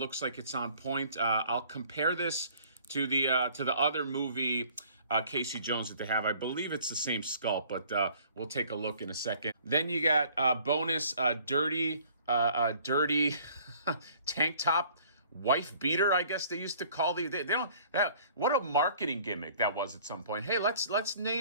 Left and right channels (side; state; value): both; inverted; correlation -0.55